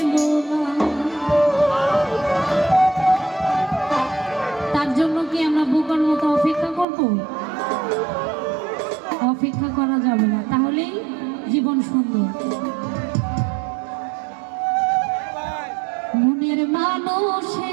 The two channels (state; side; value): drops out; left; at 6.9 s